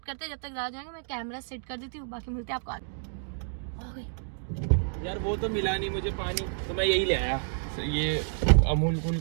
करते हैं। जब तक राज जाएंगे मैं कैमरा सेट कर देती हूँ, बाकी मिलते हैं आपको आगे। यार वो तो मिला नहीं मुझे पानी, तो मैं यही ले आया ये अमूल कूल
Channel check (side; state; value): left; silent; digital silence